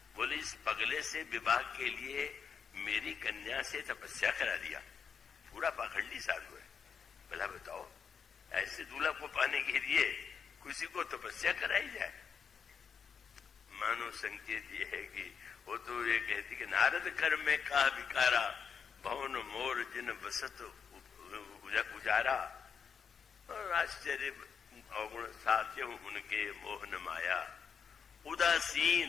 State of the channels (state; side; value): quieter; right; 6.5 dB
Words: बोले इस पगले से विवाह के लिए मेरी कन्या से तपस्या करा दिया, पूरा पाखंडी साधु है। भला बताओ, ऐसे दूल्हा को पाने के लिए किसी को तपस्या कराई जाए? मानो संकेत ये है कि वो तो ये कहती कि नारद कर में का विकारा, भवन मोर जिन बसत उजारा। और आश्चर्य अवगुण साध्य उनके मोहन माया,